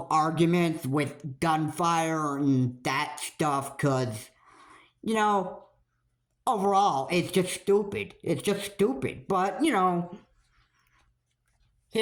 arguments with gunfire and that stuff because, you know, overall, it's just stupid. It's just stupid. But, you know,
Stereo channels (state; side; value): identical; both; correlation 1.00